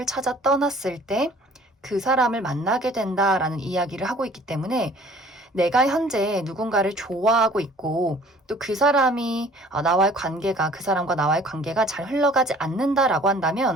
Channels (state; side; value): normal; both; correlation 0.52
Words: 찾아 떠났을 때 그 사람을 만나게 된다라는 이야기를 하고 있기 때문에 내가 현재 누군가를 좋아하고 있고 또 그 사람이 나와의 관계가 그 사람과 나와의 관계가 잘 흘러가지 않는다라고